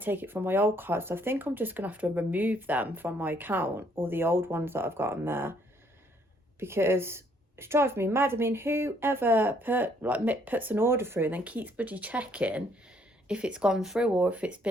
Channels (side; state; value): both; normal; correlation 0.66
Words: it from my old card. So I think I'm just going to have to remove them from my account, or the old ones that I've got on there, because it's driving me mad. I mean, whoever puts an order through and then keeps bloody checking if it's gone through or if it's